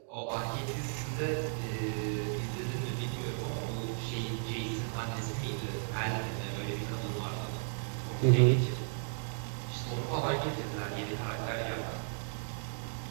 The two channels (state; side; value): silent; left; digital silence